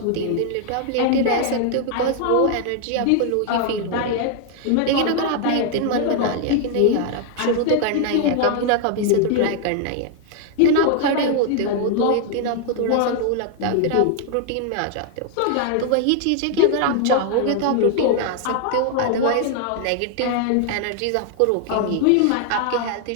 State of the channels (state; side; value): different; both; correlation 0.00